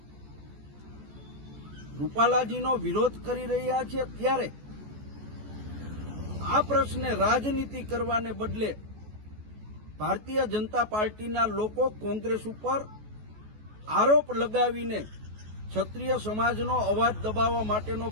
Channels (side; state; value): left; late; 14 ms